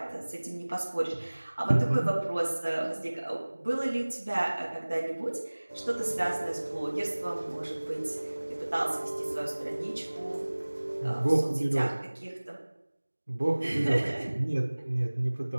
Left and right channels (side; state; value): both; inverted; correlation -1.00